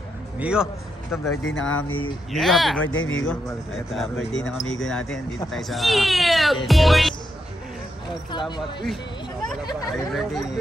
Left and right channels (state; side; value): normal; both; correlation 0.83